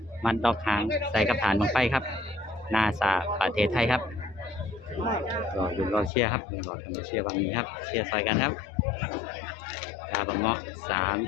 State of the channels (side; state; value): right; drops out; at 6.1 s